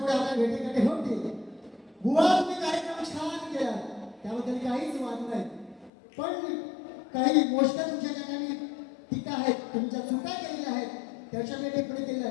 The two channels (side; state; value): right; drops out; at 5.9 s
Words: आपल्या भेटीगाठी होती. बुवा तुम्ही कार्यक्रम छान केला त्याबद्दल काहीच वाद नाही. पण काही गोष्ट तुमच्या ठिकाणी टीका आहेत तुमच्या चुका केलेल्या आहेत त्याच्या मी टिप्पणी केली